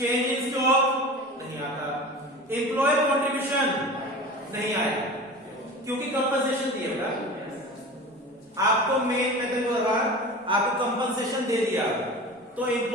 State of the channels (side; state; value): both; normal; correlation 0.34